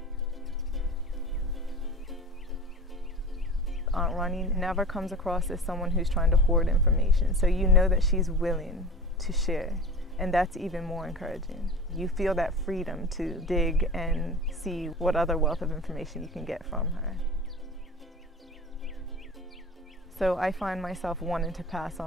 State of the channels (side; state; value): both; normal; correlation 0.36